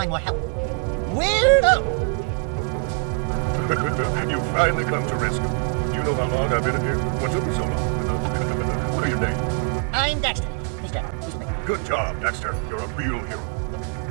more help. We'll go. And you finally come to rescue. Do you know how long I've been in here? What took me so long? What are your name? I'm Dexter. He's dead. Good job, Dexter. You're a real hero.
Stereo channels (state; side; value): quieter; left; 35.9 dB